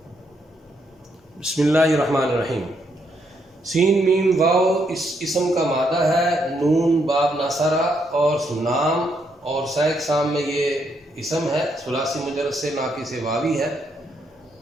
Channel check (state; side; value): normal; both; correlation 0.76